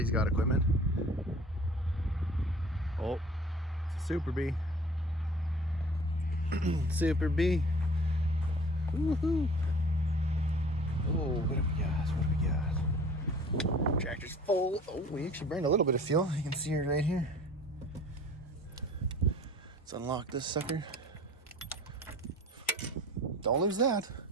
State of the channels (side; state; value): both; normal; correlation 0.46